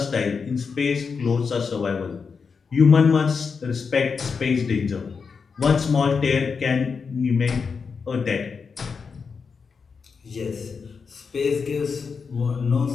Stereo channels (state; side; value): quieter; right; 5.4 dB